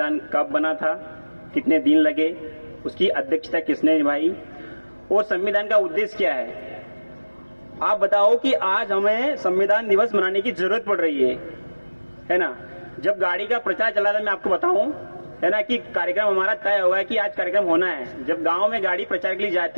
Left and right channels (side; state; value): both; inverted; correlation -1.00